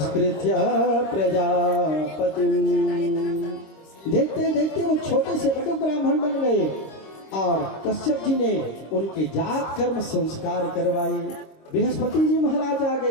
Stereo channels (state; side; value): late; right; 26 ms